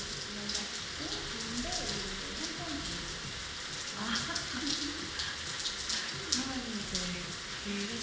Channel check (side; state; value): both; identical; correlation 1.00